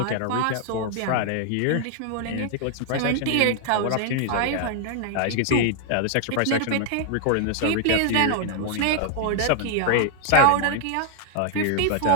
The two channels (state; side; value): different; both; correlation 0.00